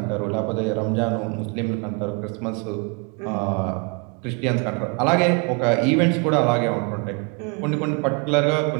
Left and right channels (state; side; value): quieter; left; 33.4 dB